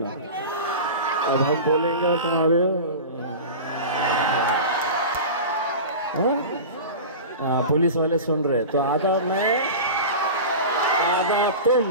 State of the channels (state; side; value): inverted; both; correlation -0.30